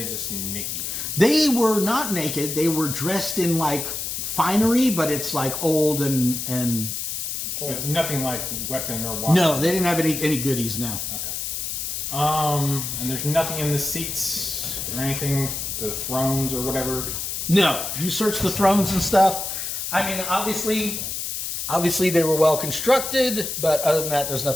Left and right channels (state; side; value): noise; left; hiss, 4 dB below the sound